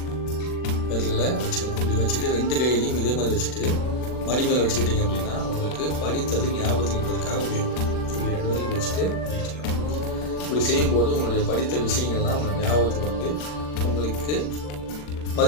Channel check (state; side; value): late; right; 40 ms